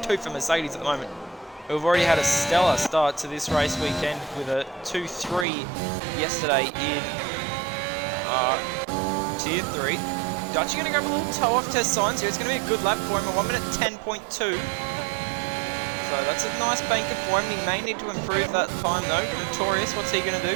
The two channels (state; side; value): drops out; left; at 5.5 s